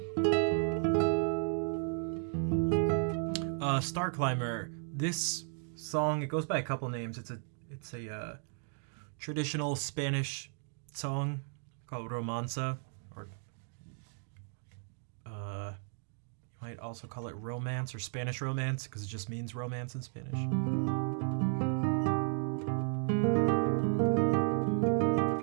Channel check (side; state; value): left; silent; 55 dB below the other